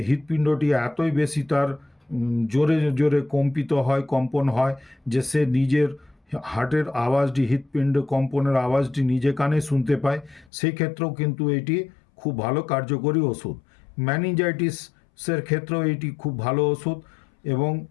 হৃৎপিণ্ডটি এতই বেশি তার জোরে জোরে কম্পন হয় যে সে নিজের হার্টের আওয়াজটি, হৃৎপিণ্ড কম্পনের আওয়াজটি নিজে কানে শুনতে পায়, সেই ক্ষেত্রেও কিন্তু এটি খুব ভালো কার্যকরী ওষুধ। ম্যানিনজাইটিসের ক্ষেত্রেও এটি খুব ভালো ওষুধ। এবং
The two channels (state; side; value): drops out; right; at 10.5 s